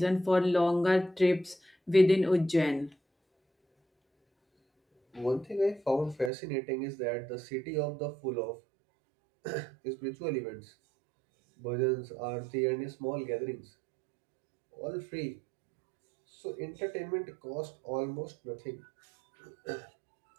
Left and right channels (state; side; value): drops out; left; at 6.3 s